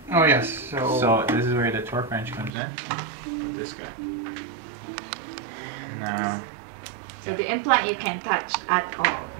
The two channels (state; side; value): drops out; left; at 2.5 s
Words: Oh yes. So this is where the torque wrench comes in. This guy. Now, So the implant you can touch at all.